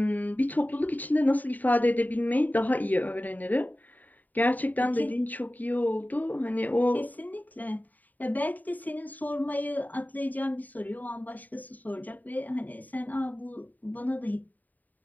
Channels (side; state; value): right; late; 0.083 ms